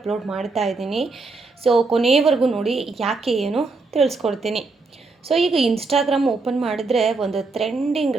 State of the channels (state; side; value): quieter; left; 3.8 dB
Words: ಮಾಡ್ತಾ ಇದ್ದೀನಿ. ಸೊ ಕೊನೆಯವರೆಗೂ ನೋಡಿ, ಯಾಕೆ ಏನು ತಿಳಿಸ್ಕೊಡ್ತೀನಿ. ಸೊ ಈಗ ಇನ್ಸ್ಟಾಗ್ರಾಮ್ ಓಪನ್ ಮಾಡಿದ್ರೆ ಒಂದು ಟ್ರೆಂಡಿಂಗ್